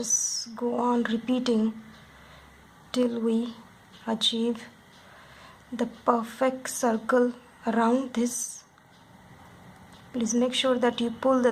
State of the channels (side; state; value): both; identical; correlation 1.00